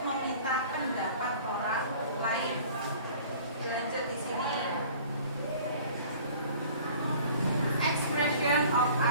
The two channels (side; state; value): both; inverted; correlation -0.48